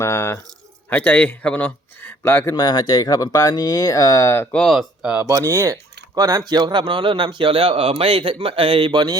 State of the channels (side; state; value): both; normal; correlation 0.59